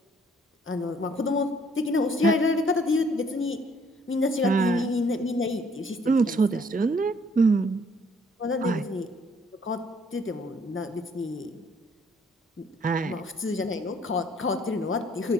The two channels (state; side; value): normal; both; correlation 0.63